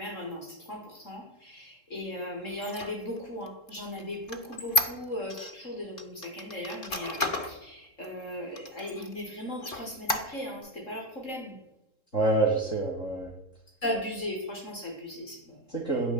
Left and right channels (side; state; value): right; late; 3.7 ms